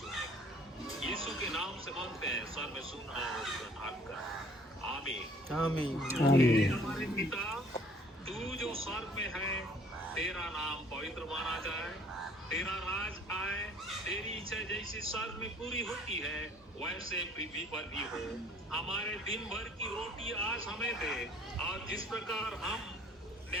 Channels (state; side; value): normal; both; correlation 0.55